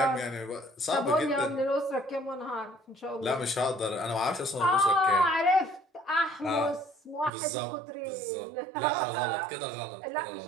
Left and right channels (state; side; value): drops out; left; at 7.3 s